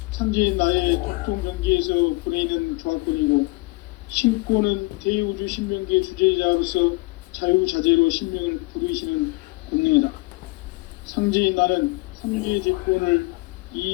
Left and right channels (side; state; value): right; quieter; 25.2 dB